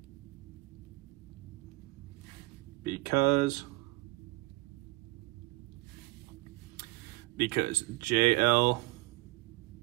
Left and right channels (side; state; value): left; quieter; 22.0 dB